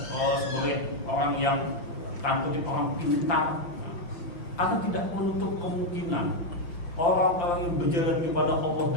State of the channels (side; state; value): right; late; 5.8 ms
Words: sebagai orang yang tanda kutip orang pintar. Atau tidak menutup kemungkinan orang-orang yang berjalan kepada Allah